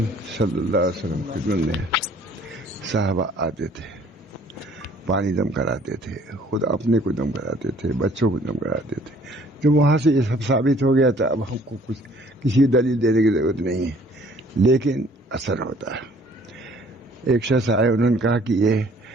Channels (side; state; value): both; normal; correlation 0.57